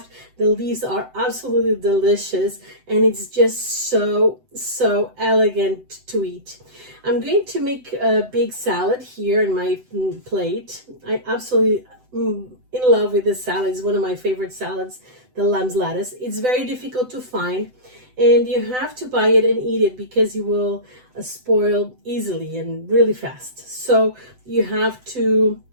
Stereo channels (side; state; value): left; late; 7.9 ms